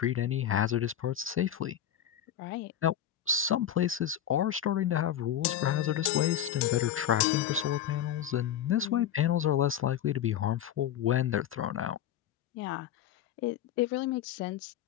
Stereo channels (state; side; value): quieter; right; 10.3 dB